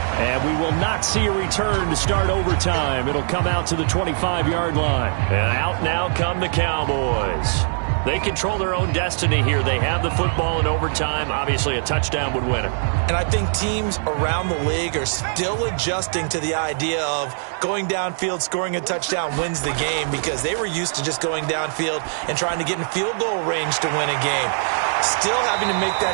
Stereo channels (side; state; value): left; silent; digital silence